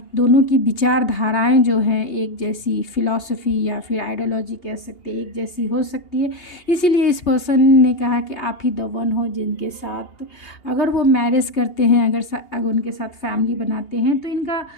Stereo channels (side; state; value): right; late; 2.8 ms